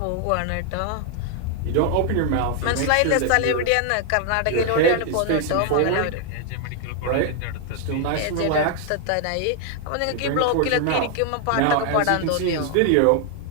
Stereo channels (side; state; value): both; different; correlation 0.00